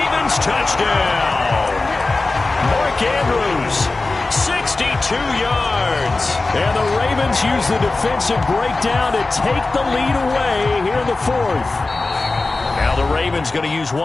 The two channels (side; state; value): right; quieter; 3.4 dB